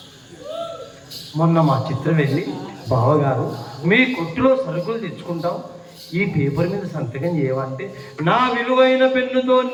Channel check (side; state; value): both; identical; correlation 1.00